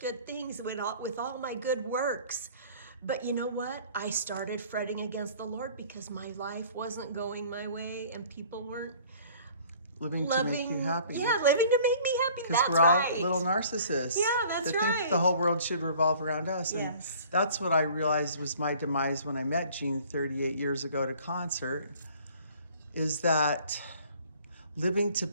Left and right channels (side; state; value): both; inverted; correlation -0.51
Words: things with all my good works. But you know what? I started fretting against the Lord because my life wasn't going my way and people weren't living to make you happy. Yeah, living to make me happy. Because we're all little narcissists. Yeah, that's that right. think the whole world should revolve around us. And yes. That's what I realized was my demise when I met Jean 38 years ago at a concert, is that living to